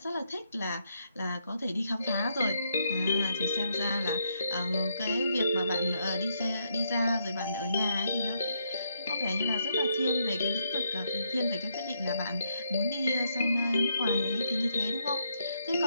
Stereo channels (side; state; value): both; inverted; correlation -0.77